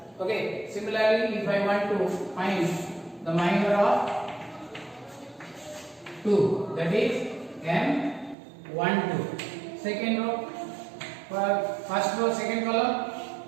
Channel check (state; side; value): drops out; left; at 8.3 s